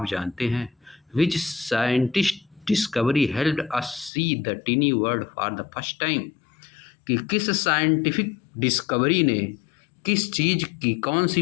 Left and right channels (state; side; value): drops out; right; at 4.1 s